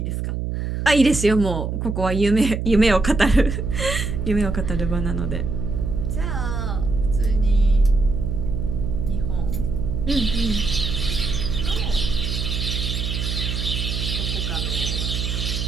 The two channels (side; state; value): right; noise; hum, 2 dB below the sound